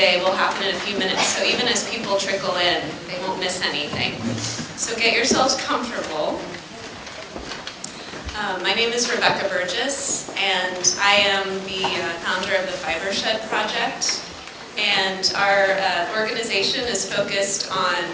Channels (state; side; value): identical; both; correlation 1.00